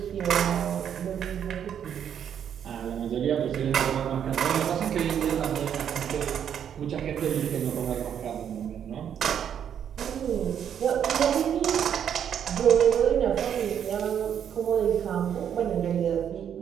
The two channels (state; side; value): quieter; left; 8.8 dB